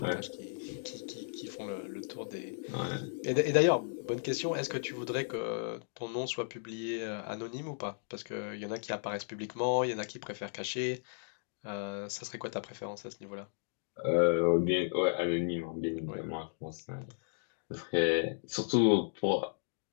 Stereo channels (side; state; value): right; silent; digital silence